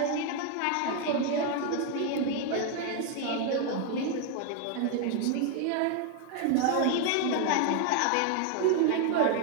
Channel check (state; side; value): different; both; correlation 0.01